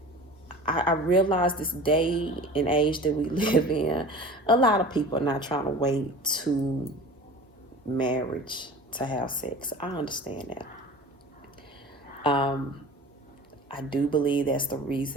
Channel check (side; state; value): both; normal; correlation 0.38